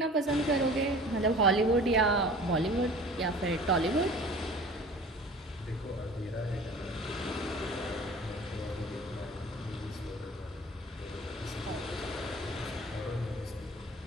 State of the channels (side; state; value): both; normal; correlation 0.44